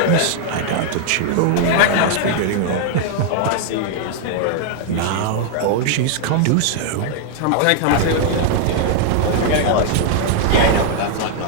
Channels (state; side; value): different; both; correlation -0.01